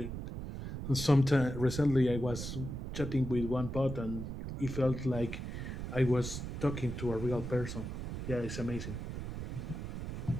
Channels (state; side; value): noise; right; rumble, 6 dB below the sound